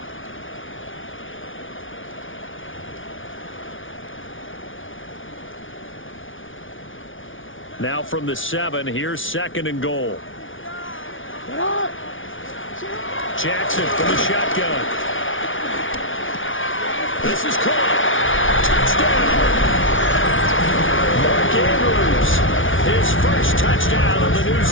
Now from the 7, here's 2nd and goal. Jackson from the shotgun. This is caught. Touchdown. Mark Andrews, his first touchdown of the new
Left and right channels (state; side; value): late; right; 0.57 ms